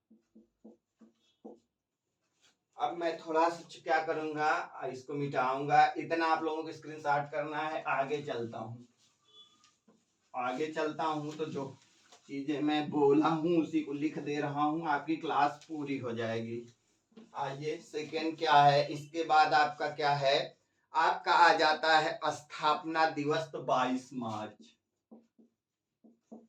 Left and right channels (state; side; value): identical; both; correlation 1.00